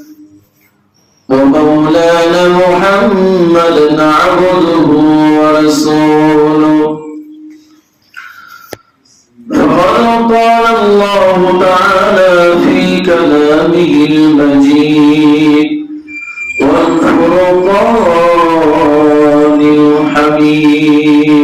ومولانا محمدا عبده ورسوله فقد قال الله تعالى في كلامه المجيد والفرقان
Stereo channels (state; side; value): identical; both; correlation 1.00